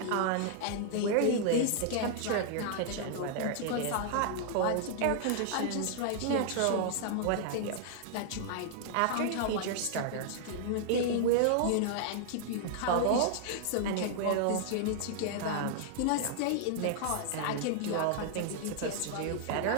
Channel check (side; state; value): both; different; correlation -0.01